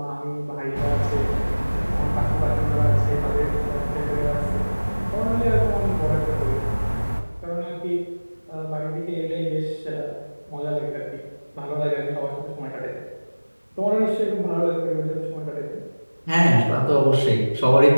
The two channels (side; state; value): both; inverted; correlation -1.00